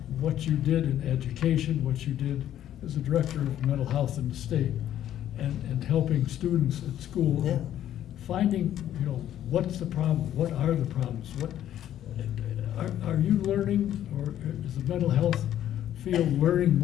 what you did in education, what you did as a director of mental health in the state, and helping students at school. Yeah. Finding, you know, what's the problem, what are the problems, Are you learning, or is the mental health field learning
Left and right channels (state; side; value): quieter; right; 11.5 dB